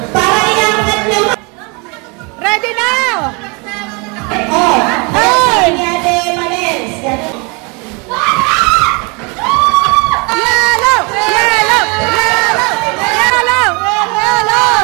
Para iangat nyo. Ready now! Oh. Hey! Ate Manels. Yellow! Yellow! Yellow! Yellow!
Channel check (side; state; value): left; quieter; 30.8 dB